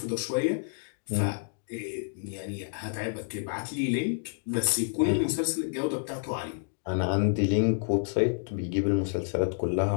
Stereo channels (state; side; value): silent; right; digital silence